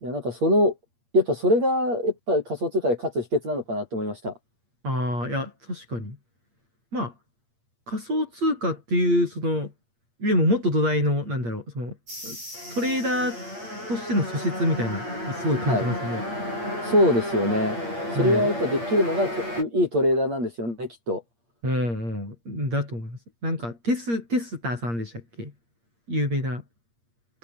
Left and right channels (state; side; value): late; left; 8.6 ms